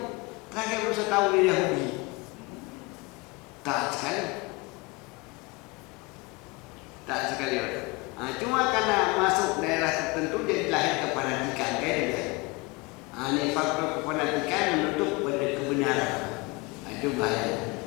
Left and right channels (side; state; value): right; quieter; 25.3 dB